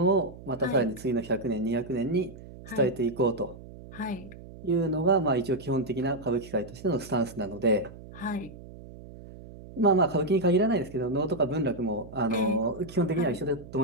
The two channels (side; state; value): right; noise; hum, 16 dB below the sound